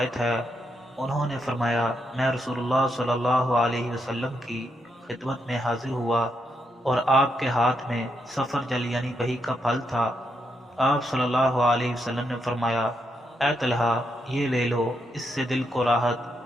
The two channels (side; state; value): both; normal; correlation 0.81